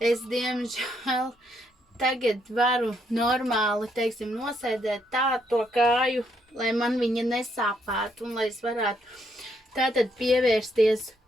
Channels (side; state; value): both; normal; correlation 0.74